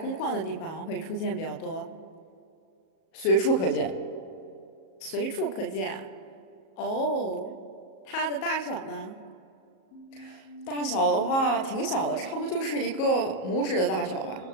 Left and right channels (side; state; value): right; late; 37 ms